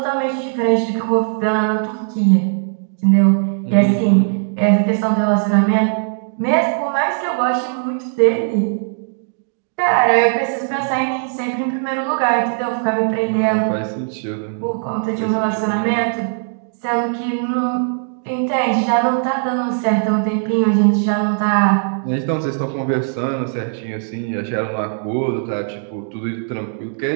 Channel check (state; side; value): silent; left; digital silence